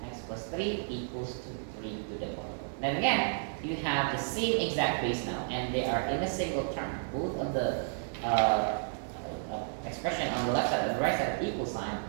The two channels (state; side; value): silent; left; digital silence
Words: X plus 3 equals to 3 to the power. Then again, you have the same exact base now, and they are in a single term. Both of the expression on the left side and the right side of the equal sign